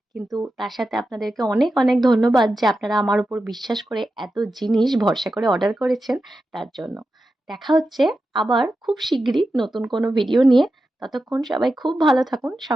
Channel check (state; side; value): normal; both; correlation 0.90